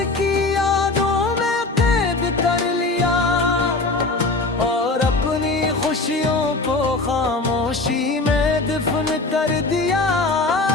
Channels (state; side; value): quieter; right; 3.3 dB